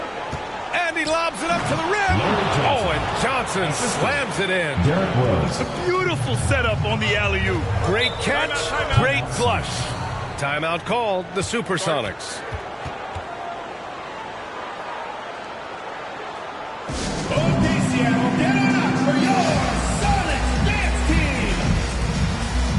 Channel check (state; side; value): identical; both; correlation 1.00